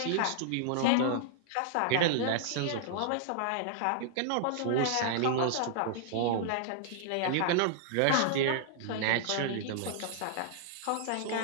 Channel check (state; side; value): different; both; correlation -0.01